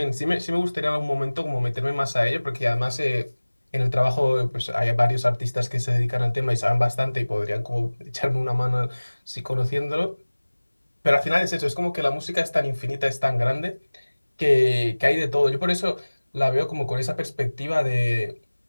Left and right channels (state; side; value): inverted; both; correlation -1.00